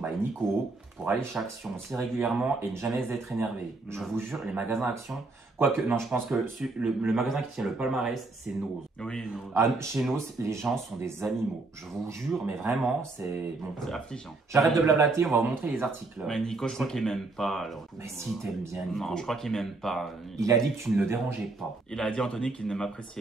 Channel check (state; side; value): quieter; left; 3.4 dB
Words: Nico, pour aller chez Action aussi régulièrement et ne jamais être énervé. Je vous jure, les magasins Action. Quoique, non, je pense que le magasin qui tient le palmarès, c'est Nose. Oui, nous. Ah, chez Nose, les gens sont des animaux. Je vous jure, mais vraiment, c'est. Bon. C'est affligeant. J'arrête de blablater, on va vous montrer les articles. Mais Nico, je crois qu'il m'aime pas. Alors. Mais si t'aimes bien Nico. Non, je crois qu'il m'aime pas. Il a dit que tu ne le dérangeais pas. Il a dit Anthony qu'il ne